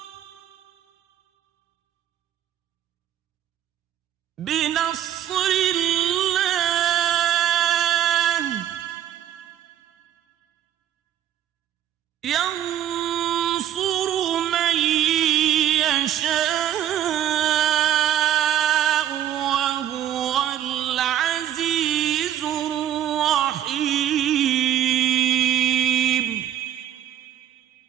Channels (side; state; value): left; quieter; 11.1 dB